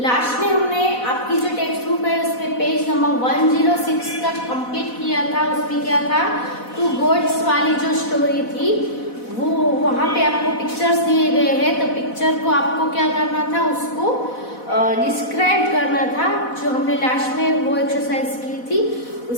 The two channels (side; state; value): right; late; 4.1 ms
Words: Last में हमने आपकी जो टेक्स्ट बुक है उसमें पेज नंबर 106 तक कंप्लीट किया था. उसमें क्या था, टू गोड्स वाली जो स्टोरी थी वो वहां पे आपको पिक्चर्स दिए गए हैं. तो पिक्चर को आपको क्या करना था, उसको डिस्क्राइब करना था, जो हमने लास्ट में वो एक्सरसाइज की थी.